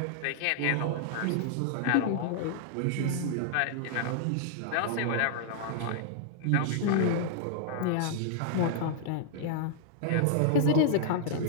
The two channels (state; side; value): different; both; correlation -0.01